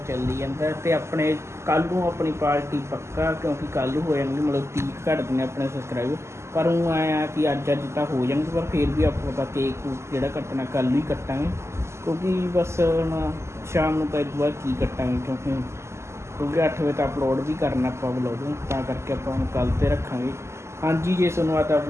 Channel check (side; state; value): left; late; 0.13 ms